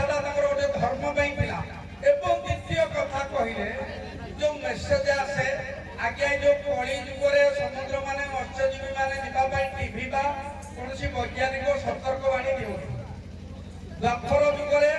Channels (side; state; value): both; identical; correlation 1.00